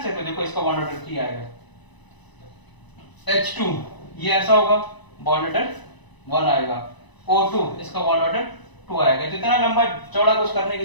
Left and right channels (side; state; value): right; late; 1.0 ms